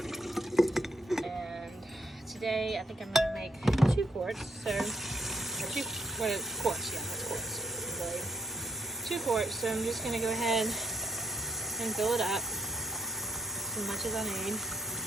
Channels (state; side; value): normal; both; correlation 0.76